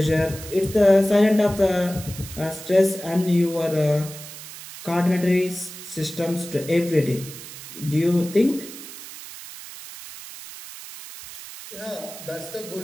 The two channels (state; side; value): noise; right; hiss, 13 dB below the sound